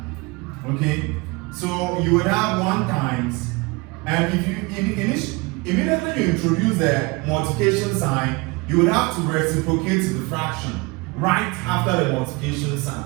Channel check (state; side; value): quieter; left; 26.0 dB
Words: Okay? So you would have 1 times, and if you immediately you introduce the multiplication sign, you would have to reciprocate the fraction right after the multiplication